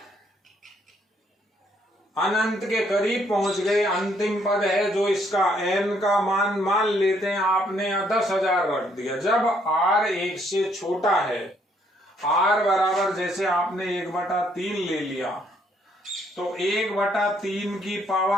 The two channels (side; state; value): both; normal; correlation 0.69